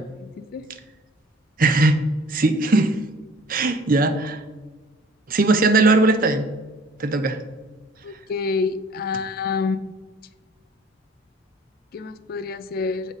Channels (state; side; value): normal; both; correlation 0.52